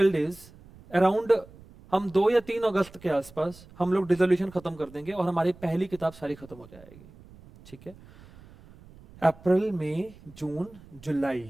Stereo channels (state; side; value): noise; right; rumble, 22 dB below the sound